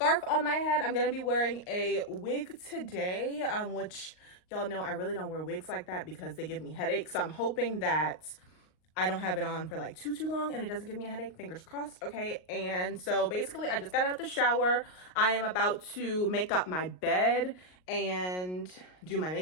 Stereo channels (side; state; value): right; late; 38 ms